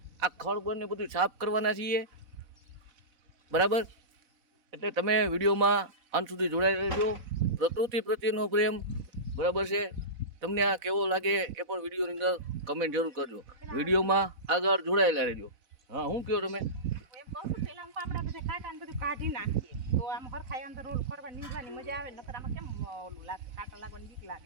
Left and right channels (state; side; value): late; left; 4.0 ms